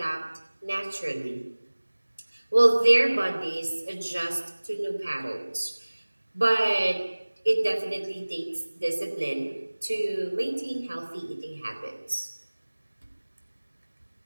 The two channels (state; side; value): inverted; both; correlation -1.00